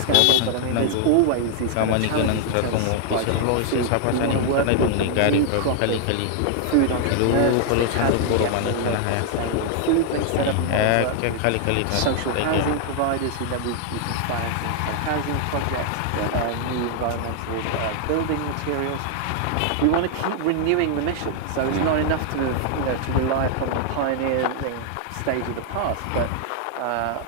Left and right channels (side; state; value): both; different; correlation 0.00